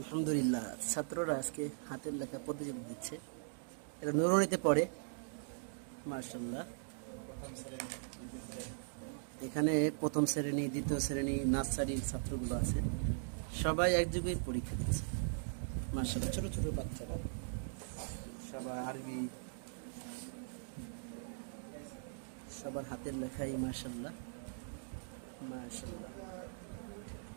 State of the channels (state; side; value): silent; left; digital silence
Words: ছাত্ররা আজকে হাতের লেখা প্রতিযোগিতা দিচ্ছে। এটা নুরুনিতে পড়ে। মাশাআল্লাহ, এখানে প্রথম শ্রেণী, দ্বিতীয় শ্রেণী, নার্সারির ছাত্রগুলো আছে। সবাই একযোগে পরীক্ষা দিচ্ছে। মাশাআল্লাহ, ছোট ছোট বাচ্চারা সবাই আরবি, সবার হাতের লেখাই। মাশাআল্লাহ মাশাআল্লাহ।